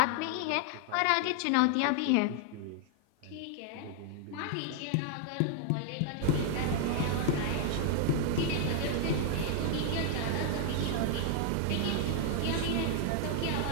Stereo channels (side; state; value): both; different; correlation 0.00